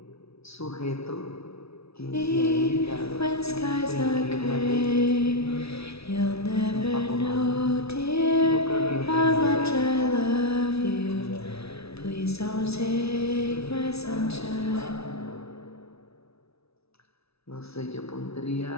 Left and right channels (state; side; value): late; right; 0.78 ms